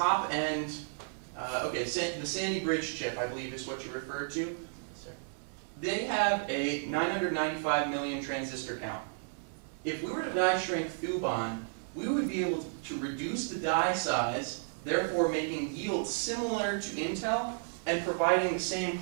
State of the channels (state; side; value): silent; left; digital silence